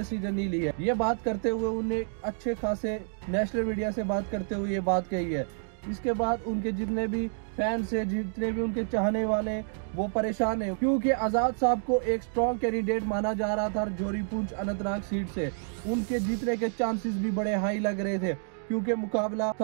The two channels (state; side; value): silent; left; digital silence